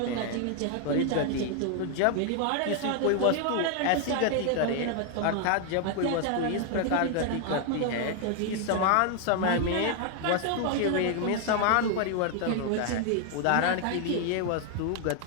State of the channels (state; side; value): different; both; correlation 0.00